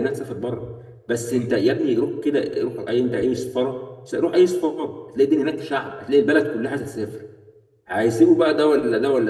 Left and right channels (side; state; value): both; identical; correlation 1.00